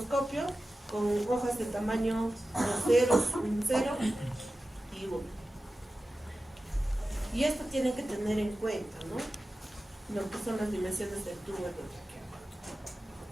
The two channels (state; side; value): normal; both; correlation 0.94